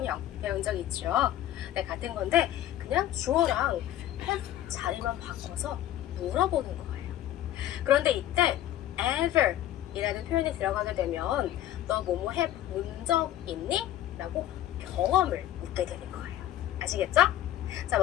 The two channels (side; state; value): right; quieter; 12.8 dB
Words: 배운 적 있죠. 네, 같은 건데 그냥 주어랑 have 자리만 바꿔서 물어보는 거예요. 그런데 이때 ever 이라는 표현이 들어가게 되면 너 뭐뭐 해본 적 있니? 라고 경험을 묻게 되는 거예요. 아시겠죠? 자,